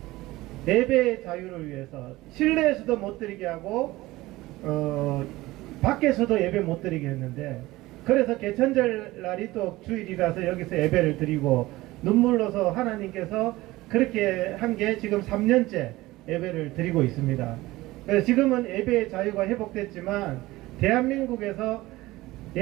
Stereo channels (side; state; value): left; quieter; 18.7 dB